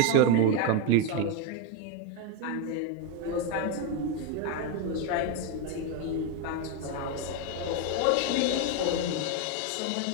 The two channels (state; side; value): different; both; correlation 0.02